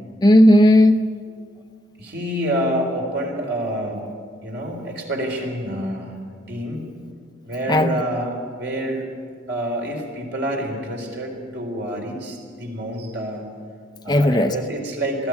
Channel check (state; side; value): normal; both; correlation 0.72